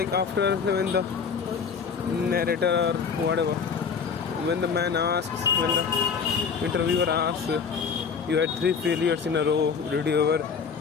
when the narrator or whatever, when the man asks, when the interviewer asks, you had 3 failures in a row, did you ever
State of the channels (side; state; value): right; quieter; 6.0 dB